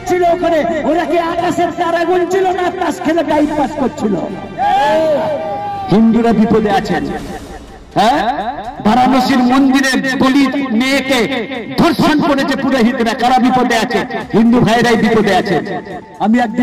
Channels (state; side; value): identical; both; correlation 1.00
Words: ওখানে? ওরা কি আকাশের তারা গুনছিল না তাস খেলে টাইম পাস করছিল? হিন্দুরা বিপদে আছেন। হ্যাঁ, বারাণসীর মন্দিরে দলিত মেয়েকে ধর্ষণ করেছে পুরোহিতরা, কারা বিপদে আছে? হিন্দু ভাইরাই বিপদে আছে। আমি